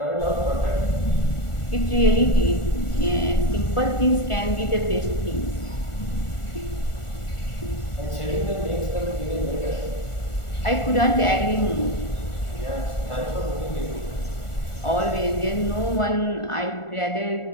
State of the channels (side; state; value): right; late; 1.4 ms